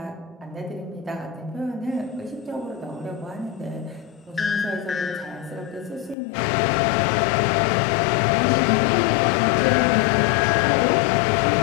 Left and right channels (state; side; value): drops out; right; at 6.2 s